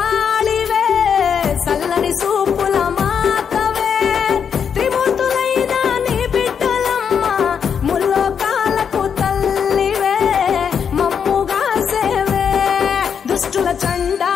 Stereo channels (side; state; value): right; quieter; 7.2 dB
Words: సల్లని సూపుల మాతవే త్రిమూర్తులైన నీ బిడ్డలమ్మ ముల్లోకాలకు తల్లివే మమ్ముగా సేవే దుష్టుల